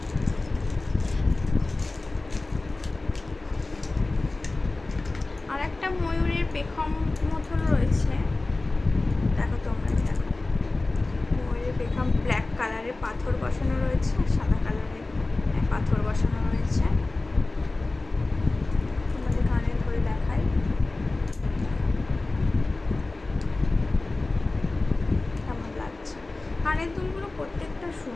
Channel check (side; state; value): right; quieter; 3.2 dB